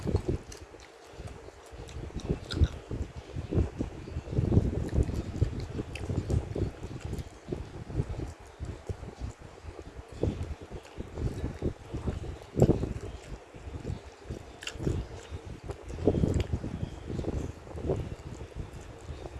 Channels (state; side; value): identical; both; correlation 1.00